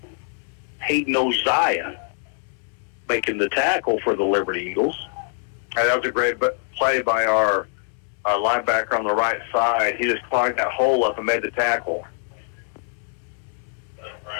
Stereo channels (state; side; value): silent; right; digital silence